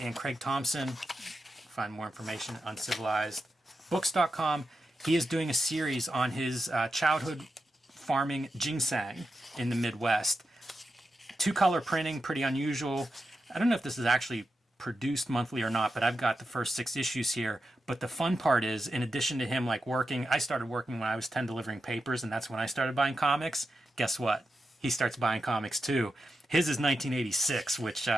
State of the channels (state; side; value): normal; both; correlation 0.89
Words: Craig Thompson, find more information at uncivilizedbooks.com. He is doing a series on his childhood farming ginseng in the Midwest. 2-color printing, pretty unusual. I don't know if this is actually produced monthly or not, but I've got the first 6 issues here. But the fun part is, in addition to him like working, I started working when I was 10 delivering papers, and that's when I started buying comics. Guess what? He starts buying comics too. His is 1986, which,